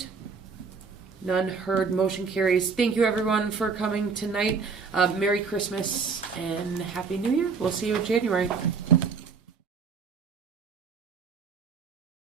None heard. Motion carries. Thank you everyone for coming tonight. Merry Christmas and Happy New Year. We'll see you in January.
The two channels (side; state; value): left; quieter; 5.3 dB